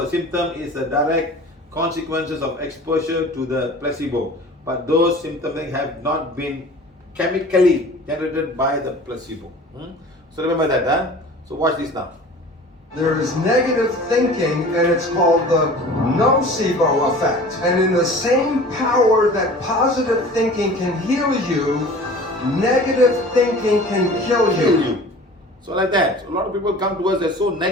a symptom is a direct consequences of exposure to the placebo. But those symptoms have not been chemically generated by the placebo. So remember that. So watch this now. There is negative thinking, and it's called the nocebo effect. And in the same power that positive thinking can heal you, negative thinking can kill you. So like that. So a lot of people come to us, they're so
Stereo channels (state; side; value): normal; both; correlation 0.42